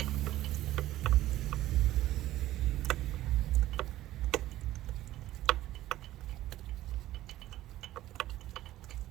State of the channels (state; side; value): quieter; left; 14.9 dB